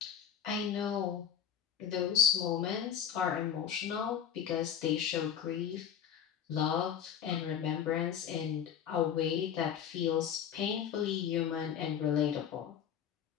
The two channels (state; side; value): quieter; right; 8.6 dB